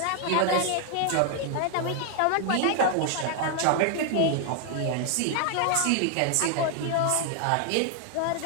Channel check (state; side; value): different; both; correlation 0.00